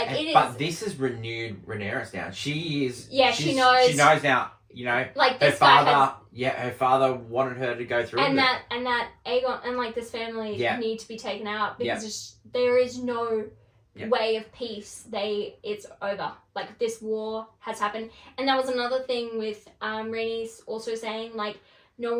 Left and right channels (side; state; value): both; identical; correlation 1.00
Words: this has renewed Rhaenyra's down. She is. Yeah, she knows. She knows now. Like her father. Her father wanted her to go through. And that Aegon and like this family need to be taken out because there is no way of peace. It's over. Like this war has happened, and that was another thing with Rhaenys also saying like no